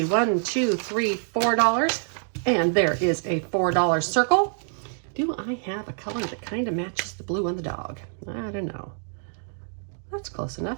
1, 2, 3, $4. And there is a $4 circle. Do I have a color that kind of matches the blue on the dog? I don't know. That's close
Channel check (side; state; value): left; silent; 60 dB below the other